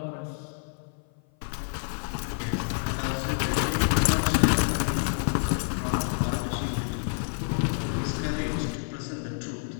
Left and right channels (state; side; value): silent; right; 55 dB below the other